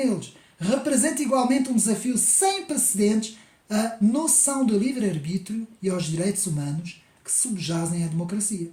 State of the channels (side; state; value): both; identical; correlation 1.00